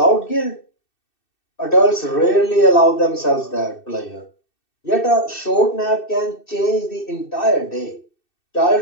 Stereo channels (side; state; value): right; late; 2.6 ms